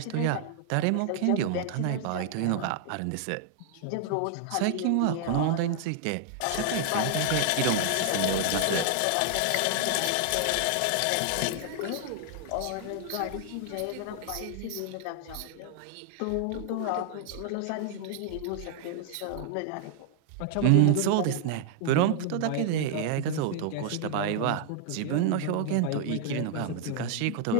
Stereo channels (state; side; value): different; both; correlation 0.00